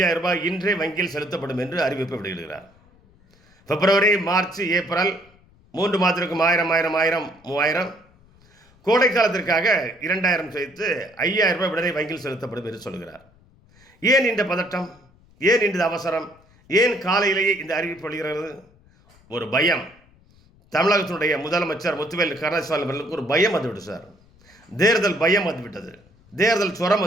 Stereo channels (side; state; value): left; noise; rumble, 30 dB below the sound